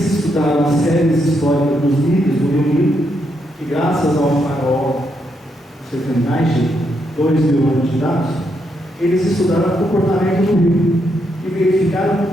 estudaram as séries históricas dos níveis do Rio Nilo, que graças ao farol, você tem mais de 2.000 anos de dados, eles estudaram o comportamento do rio e verificaram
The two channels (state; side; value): normal; both; correlation 0.79